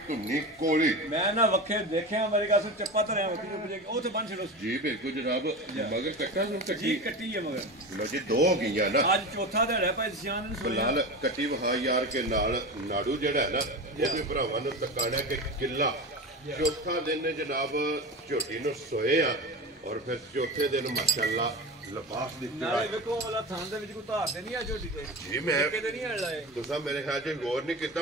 ਧੁੰਨੀ ਕੋਲੀ ਮੈਂ ਨਾ ਵੱਖੇ ਦੇਖਿਆ ਮੇਰੇ ਕਾਸੋਂ ਚੱਪਾ ਧਰਿਆ ਵੱਖੀ ਨੂੰ ਪੁੱਜੇ ਉਹ ਤੇ ਬੰਨ ਛੜੋ ਜੀ ਬਿਲਕੁਲ ਜਨਾਬ ਮਗਰ ਕੱਟਾ ਨੂੰ ਕੱਟੀ ਹੈ ਮਗਰ ਲੋ ਜੀ ਦੋ ਹੋ ਗਈਆਂ ਨਾ ਅੱਜ ਚੌਥਾ ਦਿਹਾੜਾ ਭਾਈ ਸਿਆਨ ਨੂੰ ਬਲਾਲ ਕੱਟੀ ਵਹਾ ਯਾਰ ਕੇ ਨਾਲ ਨਾੜੂ ਜਿਹੜਾ ਹੈ ਨਾ ਉਹਦੇ ਭਰਾਵਾਂ ਨੂੰ ਤਕਾਣਾ ਕਿ ਕਿੱਲਾ ਚੌਥਾ ਦਿਨ ਜਨਾਬ ਝੋਟੀ ਨੂੰ ਸੋਏ ਆ ਔਰ ਫਿਰ ਚੌਥੇ ਦਿਨ ਮਾਸ਼ਾਅੱਲਾ ਲਿਬਾਸ ਦੀ ਨਾਲੇ ਵੇਖੋ ਵਾਲਾ ਥਾਂ ਦੇ ਵਿੱਚ ਕੋਈ ਧਾਰ ਤੇ ਨਹੀਂ ਆ ਝੋਟੀ ਤੇ ਜੀ ਮੈਂ ਕਿਤੇ ਨਹੀਂ ਹਲ ਲਾਏ ਤੁਸੀਂ ਮੇਰੇ ਖਿਆਲ 'ਚ ਗੌਰ ਨਹੀਂ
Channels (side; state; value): both; normal; correlation 0.26